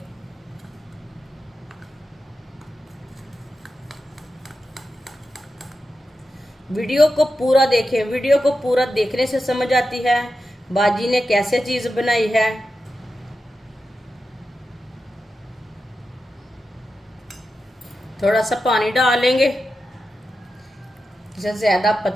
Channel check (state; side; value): normal; both; correlation 0.90